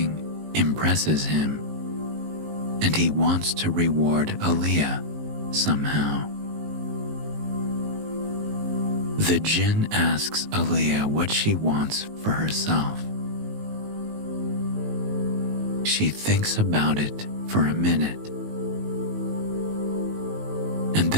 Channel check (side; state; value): left; late; 19 ms